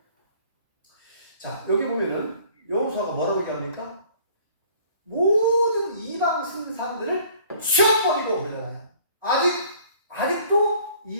자, 여기 보면은 여호수아가 뭐라고 얘기합니까? 모든 이방 신상들을 치워버리고 그러잖아요. 아직도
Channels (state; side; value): inverted; both; correlation -0.54